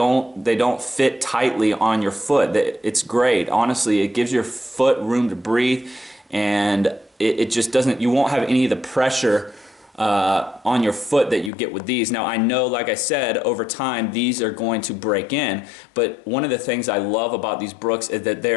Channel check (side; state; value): right; drops out; at 11.5 s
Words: fit tightly on your foot. It's great. Honestly, it gives your foot room to breathe, and it just doesn't, you won't have any of the pressure on your foot that you get with these. Now I know, like I said, over time these are going to break in, but one of the things I love about these Brooks is that